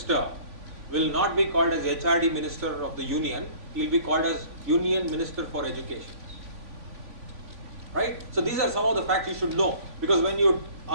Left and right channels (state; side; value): late; left; 3.5 ms